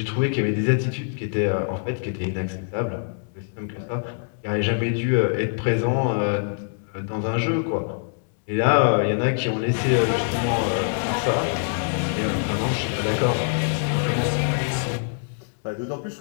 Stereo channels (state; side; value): silent; right; digital silence